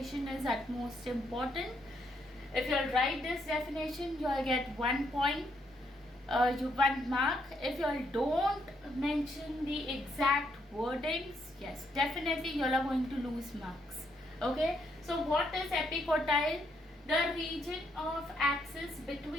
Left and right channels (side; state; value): both; normal; correlation 0.75